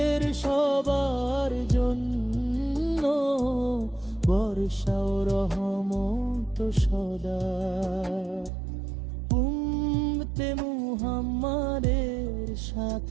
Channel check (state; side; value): drops out; left; at 8.5 s